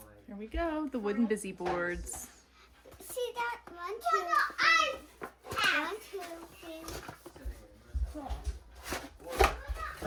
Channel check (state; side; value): identical; both; correlation 1.00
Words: Here we go, the wooden busy boards. See that? 1, 2, 3.